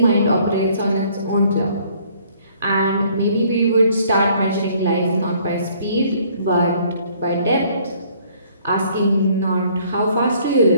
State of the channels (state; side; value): inverted; both; correlation -0.61